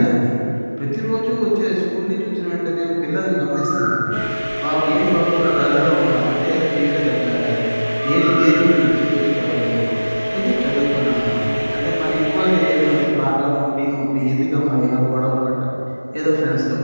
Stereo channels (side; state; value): both; inverted; correlation -1.00